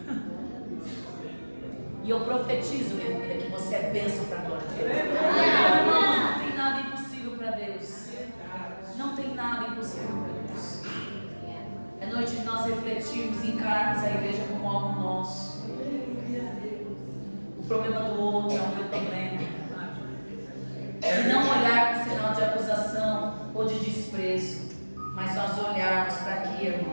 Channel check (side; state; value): both; inverted; correlation -1.00